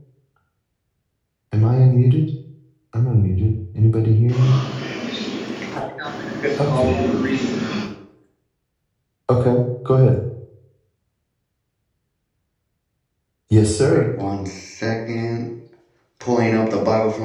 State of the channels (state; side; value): identical; both; correlation 1.00